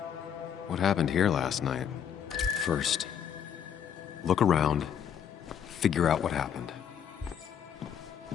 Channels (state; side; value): quieter; right; 8.5 dB